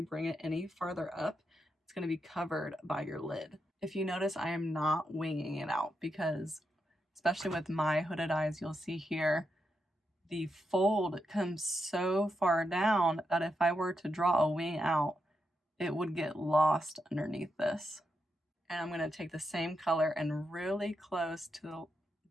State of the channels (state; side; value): normal; both; correlation 0.84